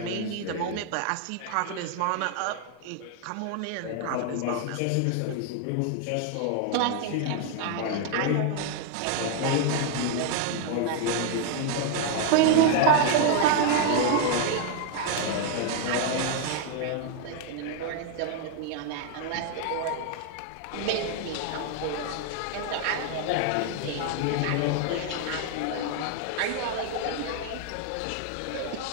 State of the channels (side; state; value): both; different; correlation 0.00